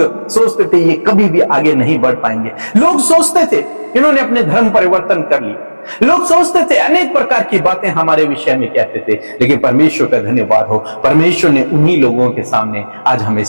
सोचते थे ये कभी भी आगे नहीं बढ़ पाएंगे, लोग सोचते थे इन्होंने अपने धर्म परिवर्तन कर लिया, लोग सोचते थे, अनेक प्रकार की बातें हमारे विषय में कहते थे। लेकिन परमेश्वर का धन्यवाद हो, परमेश्वर ने उन्हीं लोगों के सामने आज हमें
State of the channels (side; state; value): both; inverted; correlation -1.00